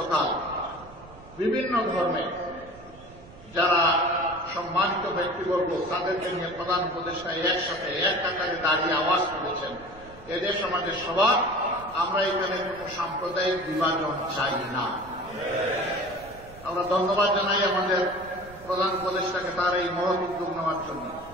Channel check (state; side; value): noise; right; rumble, 20 dB below the sound